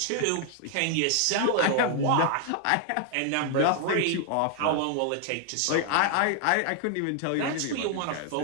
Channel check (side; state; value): both; different; correlation 0.00